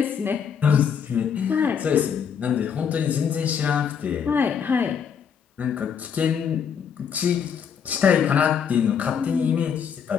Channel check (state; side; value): quieter; right; 7.3 dB